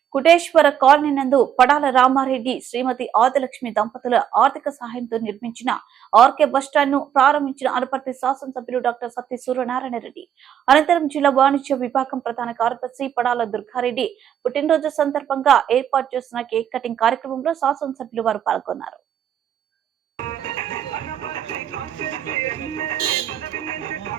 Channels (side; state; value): left; quieter; 9.4 dB